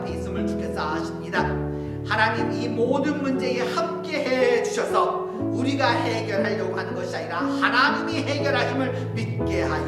있음을 주께서 아십니다. 하나님, 이 모든 문제에 함께해 주셔서 우리가 해결하려고 하는 것이 아니라 하나님이 해결하심을 믿게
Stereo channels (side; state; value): both; identical; correlation 1.00